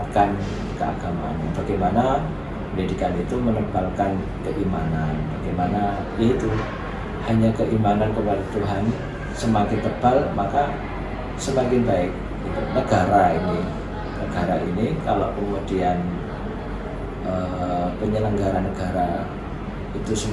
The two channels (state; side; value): identical; both; correlation 1.00